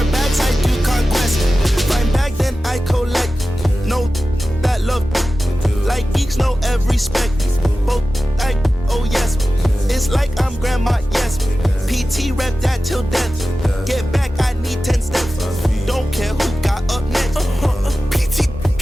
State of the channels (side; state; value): both; normal; correlation 0.95